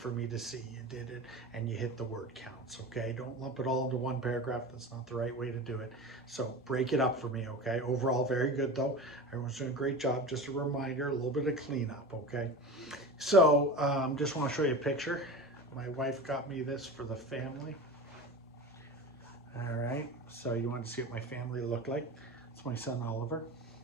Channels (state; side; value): normal; both; correlation 0.30